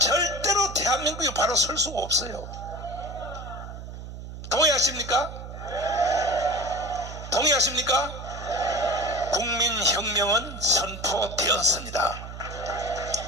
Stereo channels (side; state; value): right; noise; hum, 11 dB below the sound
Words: 대한민국이 바로 설 수가 없어요. 동의하십니까? 동의하십니까? 국민혁명은 선포되었습니다.